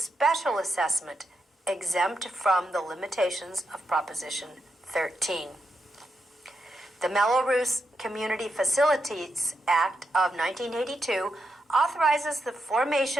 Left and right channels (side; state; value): both; normal; correlation 0.85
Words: assessment, exempt from the limitations of Proposition 13. The Mello-Roos Community Facilities Act of 1982 authorizes the